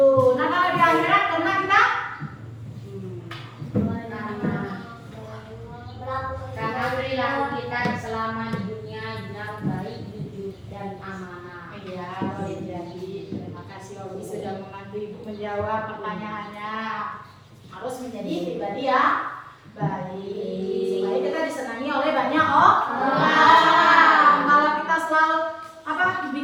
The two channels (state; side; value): identical; both; correlation 1.00